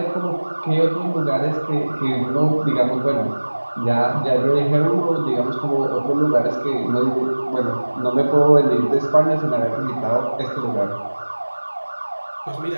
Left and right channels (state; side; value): inverted; both; correlation -1.00